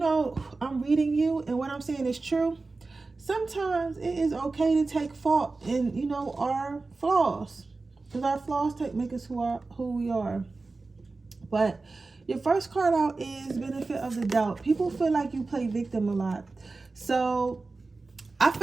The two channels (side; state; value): left; quieter; 3.7 dB